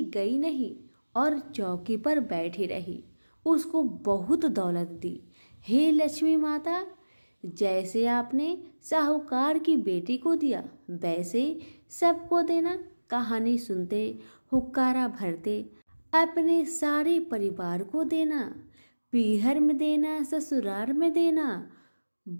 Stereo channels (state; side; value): inverted; both; correlation -1.00